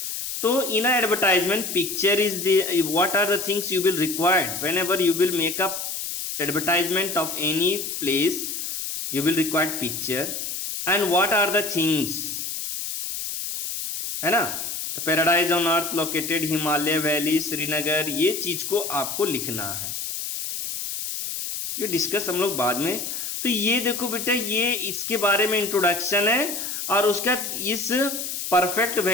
तो in advertisement picture is the what are the things you will required whenever you will make up advertisement of any place. You will required picture and what are the things, है ना. तो paradise on earth located, Himalaya valley, Srinagar, ये चीज को आपको लिखना है. ये डिस्कस हम लोग बाद में. तो ये देखो बेटा, ये इसके बारे में इंट्रोडक्शन है और उसका इस परफेक्ट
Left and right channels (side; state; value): left; noise; hiss, 5 dB below the sound